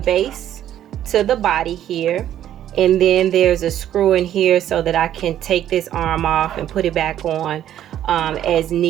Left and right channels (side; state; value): left; quieter; 11.3 dB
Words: base to the body here. And then there's a screw in here so that I can take this arm off and put it back on as